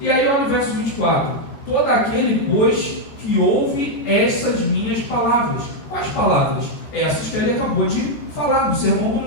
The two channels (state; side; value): late; right; 14 ms